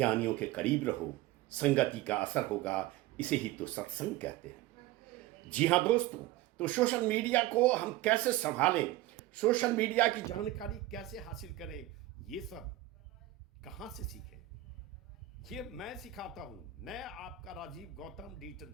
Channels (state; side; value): quieter; left; 15.4 dB